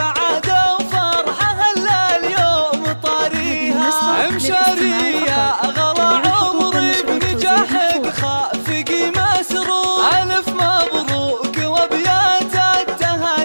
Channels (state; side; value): inverted; both; correlation -1.00